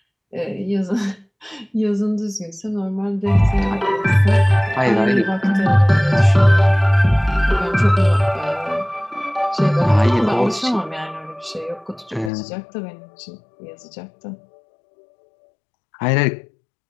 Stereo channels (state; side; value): drops out; right; at 12.3 s